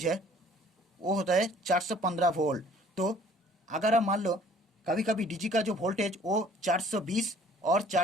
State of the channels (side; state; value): both; normal; correlation 0.55